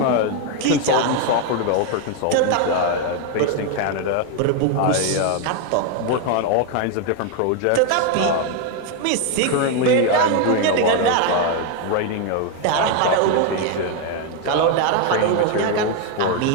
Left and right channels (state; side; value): different; both; correlation 0.01